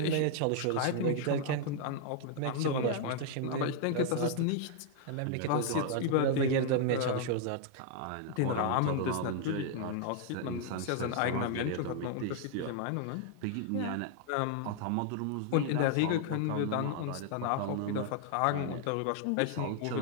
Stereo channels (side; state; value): both; different; correlation 0.00